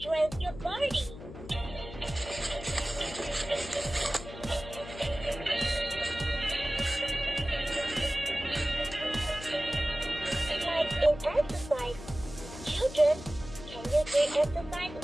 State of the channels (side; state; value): left; noise; hum, 13 dB below the sound